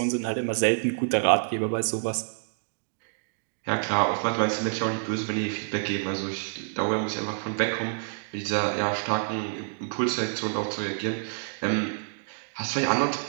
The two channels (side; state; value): left; silent; digital silence